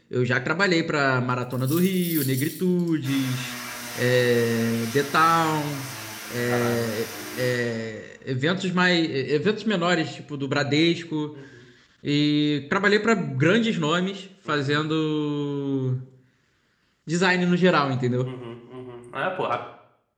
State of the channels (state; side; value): identical; both; correlation 1.00